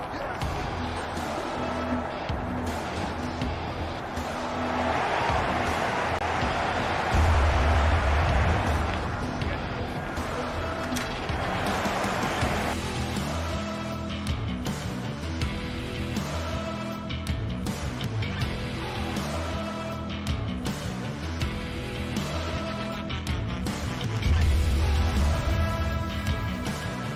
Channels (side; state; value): both; identical; correlation 1.00